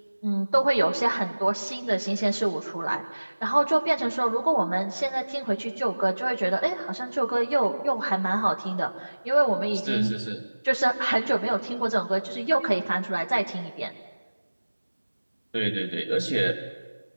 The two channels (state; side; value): inverted; both; correlation -1.00